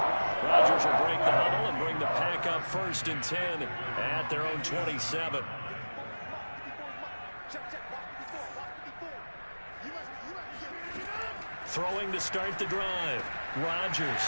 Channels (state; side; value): inverted; both; correlation -1.00